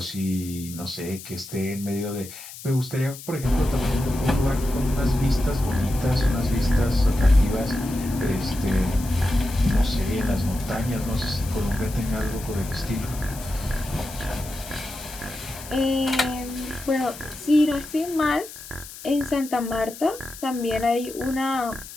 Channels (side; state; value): left; noise; hiss, 14 dB below the sound